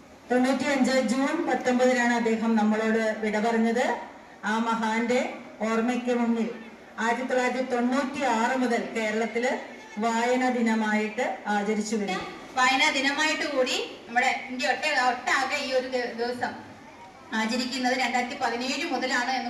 ജൂൺ 19 അദ്ദേഹം നമ്മളോട് വിട പറഞ്ഞത്. ആ മഹാന്റെ ഓർമ്മയ്ക്ക് മുന്നിൽ 1996 മുതൽ കേരളത്തില് വായനാ ദിനമായിട്ട് ആചരിച്ചു വരുന്നു. വായനാ ദിനമായിട്ട് കൂടി നമ്മുടെ ഇന്ത്യ ഒട്ടാകെ ഈ ഒരു ദിവസം ആചരിക്കുന്നത് 2017 മുതലാണ്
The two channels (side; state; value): both; identical; correlation 1.00